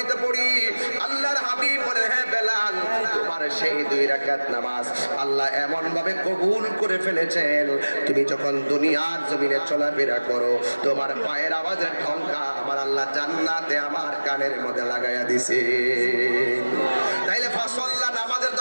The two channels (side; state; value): both; inverted; correlation -1.00